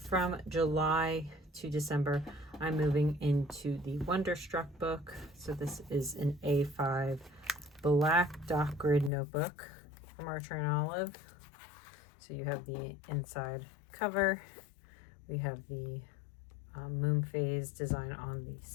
July to December, I'm moving into the Wonderstruck book. So this is an A5 black dot grid notebook from Archer and Olive. So you have the inside cover. We have the moon phase design on the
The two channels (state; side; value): drops out; right; at 9.1 s